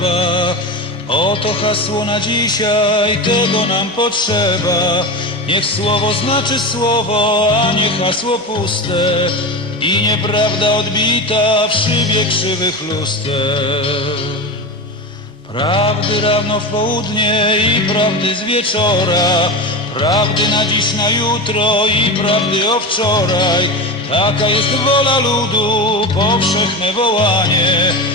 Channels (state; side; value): normal; both; correlation 0.23